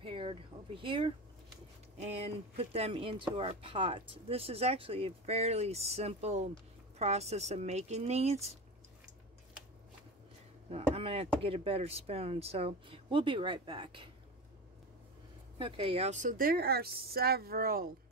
over here, and put them into our pot. This is actually a fairly simple process of making these. I'm going to have to get a better spoon, so we'll be right back. Okay, y'all, so there are several,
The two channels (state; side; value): normal; both; correlation 0.25